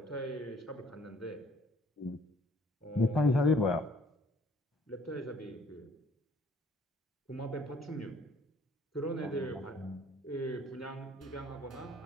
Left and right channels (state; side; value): normal; both; correlation 0.59